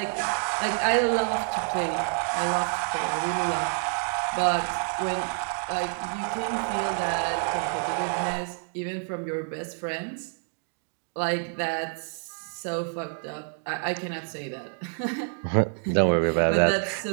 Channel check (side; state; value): left; silent; 56 dB below the other